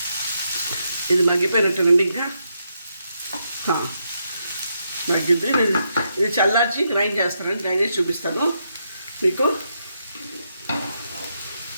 మగ్గిపోయినట్టేనండి. ఇంకా మగ్గింది. ఇది చల్లార్చి గ్రైండ్ చేస్తానండి. గ్రైండ్ చేసి చూపిస్తాను మీకు.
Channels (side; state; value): both; inverted; correlation -0.80